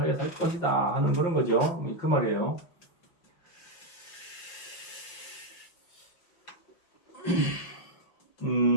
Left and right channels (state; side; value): late; right; 5.8 ms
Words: 살 것이다 하는 그런 거죠. 그 말이에요.